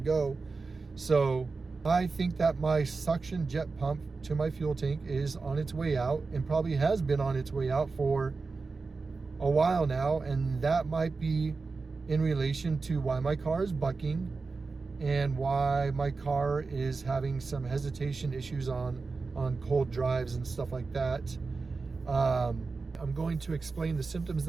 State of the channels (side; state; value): left; quieter; 4.2 dB